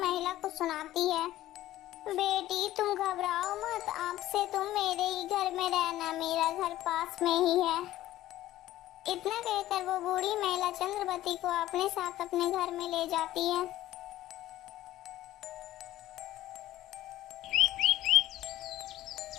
को सुनाती है। बेटी तुम घबराओ मत, आपसे तुम मेरे ही घर में रहना, मेरा घर पास में ही है। इतना कहकर वो बूढ़ी महिला चंद्रवती को अपने साथ अपने घर में ले जाती है।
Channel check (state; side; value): quieter; right; 14.6 dB